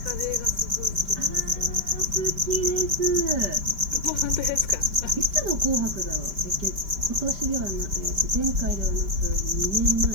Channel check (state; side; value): late; left; 5.1 ms